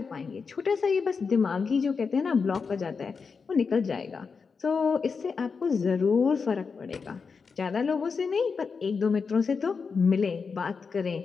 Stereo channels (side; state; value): right; quieter; 5.3 dB